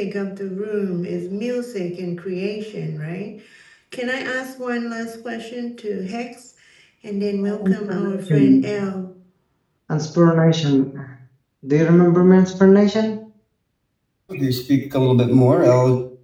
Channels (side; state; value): both; identical; correlation 1.00